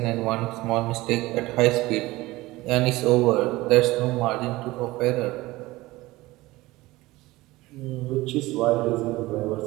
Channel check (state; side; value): quieter; left; 19.4 dB